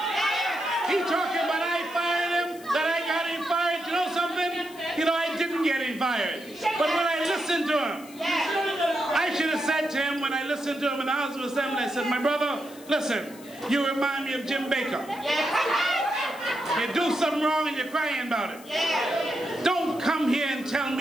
He talking about I fired him, that I got him fired. You know something? You know, I didn't get him fired. But when I listened to him, I should have said to him, when I listened to him in the House of Assembly, I said, my brother, listen, you remind me of Jim Baker. You do something wrong and you're crying about it. Don't come here and tell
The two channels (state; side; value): noise; left; hiss, 21 dB below the sound